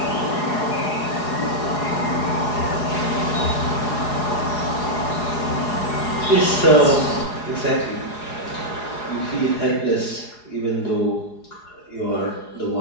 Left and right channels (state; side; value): late; right; 4.8 ms